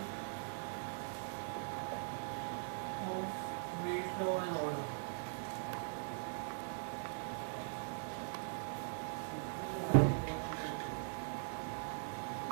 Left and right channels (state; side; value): silent; left; digital silence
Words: of rate, law and order.